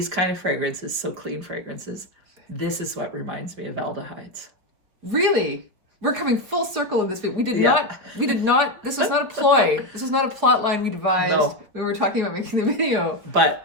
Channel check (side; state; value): left; late; 5.0 ms